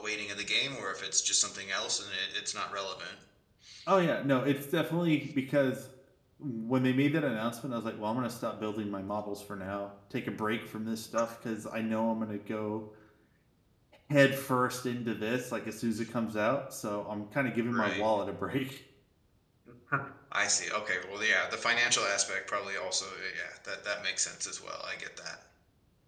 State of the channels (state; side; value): identical; both; correlation 1.00